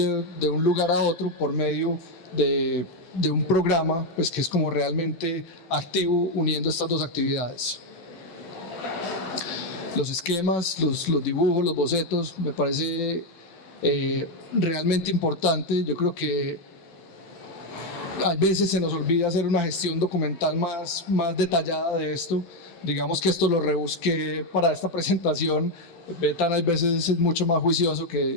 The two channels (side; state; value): right; late; 16 ms